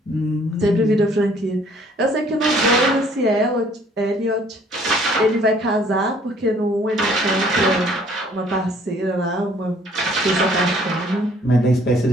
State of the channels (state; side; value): normal; both; correlation 0.59